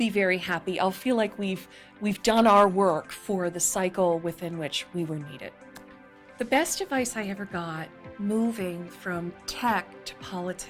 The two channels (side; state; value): both; identical; correlation 1.00